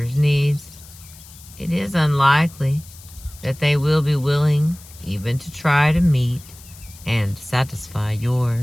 needs, it is unlikely that they will be willing even to try to meet and satisfy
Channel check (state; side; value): noise; left; hiss, 21 dB below the sound